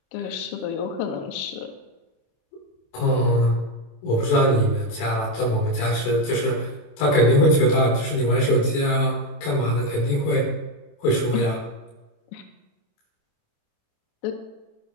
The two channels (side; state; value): right; late; 27 ms